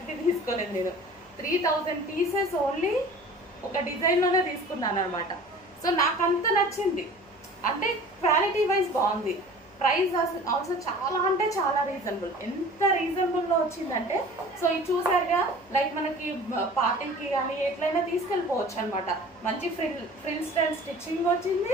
తీసుకోలేదు నేను. 3000 పీసెస్ ఓన్లీ ఒక డిజైన్లోనే తీసుకున్నాను అనమాట. సో నాకు అంత నచ్చింది, అంటే క్వాలిటీ వైజ్ బాగుంది. ప్రైస్ ఆల్సో చాలా అంటే చాలా రీజనబుల్. ఎంత రీజనబుల్లో వచ్చిందంటే, సో ఇది చూసారుగా, లైక్ మనకి పార్టీకి కానీ ఎట్లయినా తీసుకెళ్ళిపోవచ్చు అనమాట. మంచి ఫ్రిల్ స్టైల్ స్టిచ్చింగ్ వచ్చింది.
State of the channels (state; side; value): noise; left; hum, 28 dB below the sound